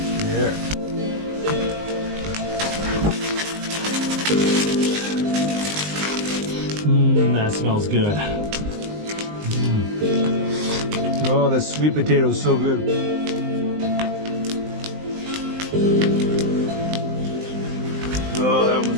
There. That smells good. Oh, the sweet potato is so good.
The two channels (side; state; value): left; late; 19 ms